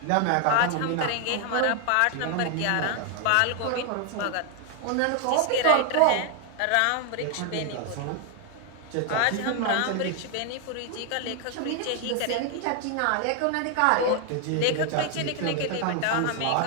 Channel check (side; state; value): both; different; correlation 0.00